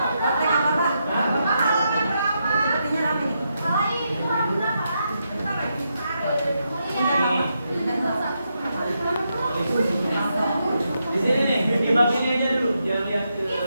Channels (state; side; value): inverted; both; correlation -0.83